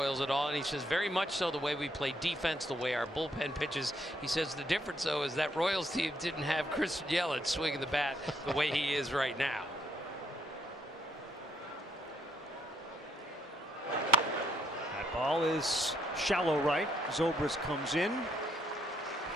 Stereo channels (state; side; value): normal; both; correlation 0.72